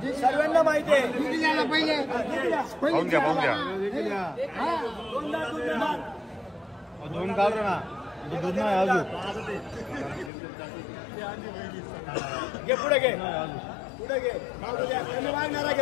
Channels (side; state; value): right; drops out; at 10.3 s